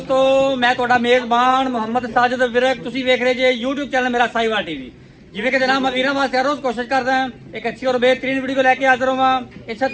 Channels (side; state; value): both; identical; correlation 1.00